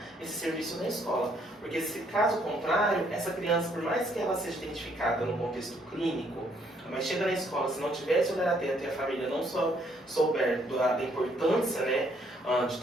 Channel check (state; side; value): normal; both; correlation 0.68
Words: esse serviço na escola, porque se caso contrário, essa criança, por mais que ela seja identificada no contexto clínico, mas chega na escola, se não tiver esse olhar atento e a família não souber da importância, né, de